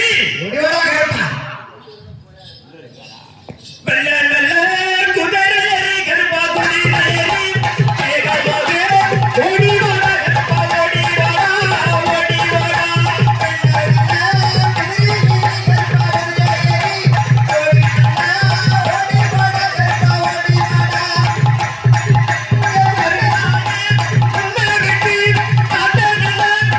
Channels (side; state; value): both; identical; correlation 1.00